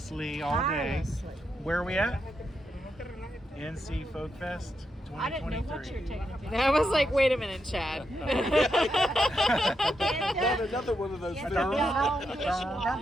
all day. Where are we at? NC Folk Fest 2023. I didn't know what you were taking. I was like, wait a minute, Chad. Not another one of those things.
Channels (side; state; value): both; normal; correlation 0.83